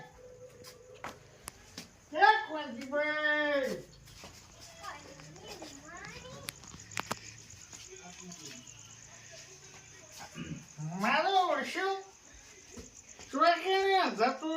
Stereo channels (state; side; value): identical; both; correlation 1.00